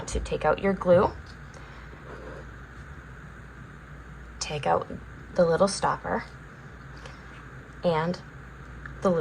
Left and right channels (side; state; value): both; identical; correlation 1.00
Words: to take out your glue. Take out the little stopper and the